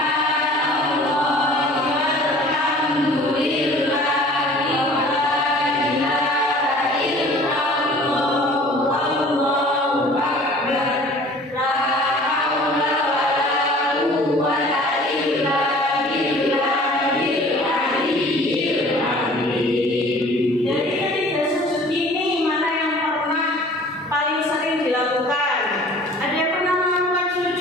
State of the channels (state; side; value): normal; both; correlation 0.48